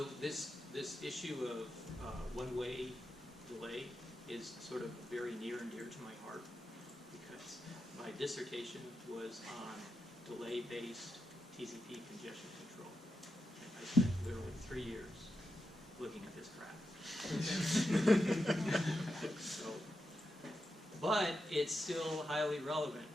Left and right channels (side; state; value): both; normal; correlation 0.87